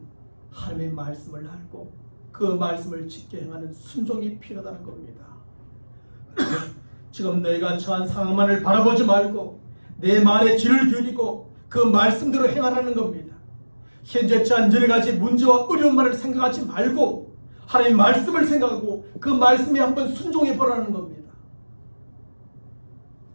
하나님의 말씀을 알고 그 말씀을 지켜 행하는 순종이 필요하다는 겁니다. 지금 너희가 처한 상황만을 바라보지 말고 내 말에 귀를 기울이고 그 말씀대로 행하라는 겁니다. 현재 처한 여러 가지 문제와 어려움만을 생각하지 말고 하나님의 말씀을 생각하고 그 말씀에 한번 순종해 보라는 겁니다.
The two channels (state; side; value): inverted; both; correlation -1.00